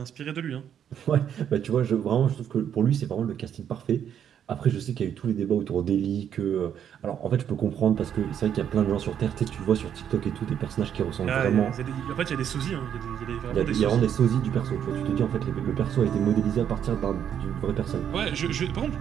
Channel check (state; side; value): quieter; left; 9.1 dB